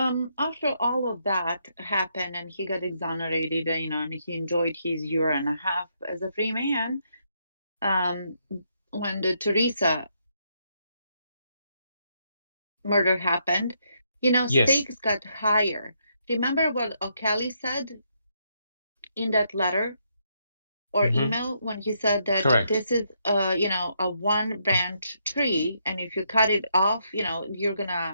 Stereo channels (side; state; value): both; inverted; correlation -0.76